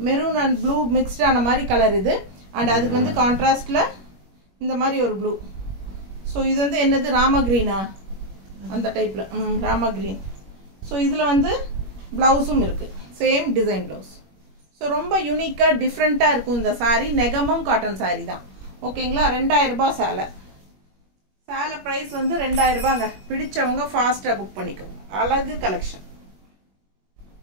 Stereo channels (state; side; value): late; left; 21 ms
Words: மெரூன் அண்ட் ப்ளூ மிக்ஸ்டான மாதிரி கலர் இது அண்ட் அதுக்கு வந்து கான்ட்ராஸ்ட்ல இந்த மாதிரி ஒரு ப்ளூ. ஸோ இது வந்து என்னது ராமா கிரீனா? அந்த டைப்ல ராமா கிரீன். ஸோ இதுல வந்து பிளவுஸும் இருக்கு, சேம் டிசைன் பிளவுஸ். ஸோ ரொம்ப யூனிக்கா டிஃப்ரெண்டா இருக்கும் இந்த சாரி. நெகமம் காட்டன் சாரி தான் ஓகேங்களா? 2000 ரூபாய் சேலை பிரைஸ் வந்து 2000 ரூபாங்க. பிடிச்சவங்க ஃபாஸ்டா புக் பண்ணிக்கோங்க. அழகு கலெக்ஷன்